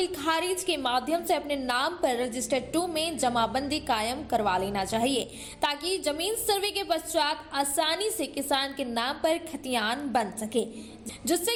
खारिज के माध्यम से अपने नाम पर रजिस्टर 2 में जमाबंदी कायम करवा लेना चाहिए, ताकि जमीन सर्वे के पश्चात आसानी से किसान के नाम पर खतियान बन सके,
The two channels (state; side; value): identical; both; correlation 1.00